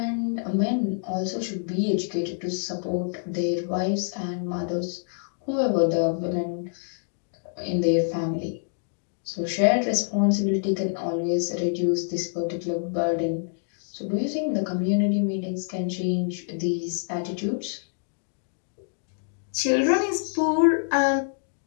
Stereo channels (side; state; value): right; silent; digital silence